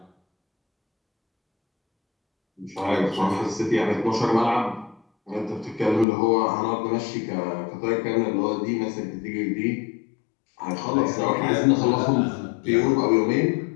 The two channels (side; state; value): right; drops out; at 6.1 s